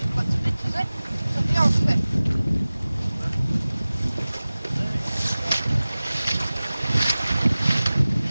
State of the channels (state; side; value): inverted; both; correlation -0.98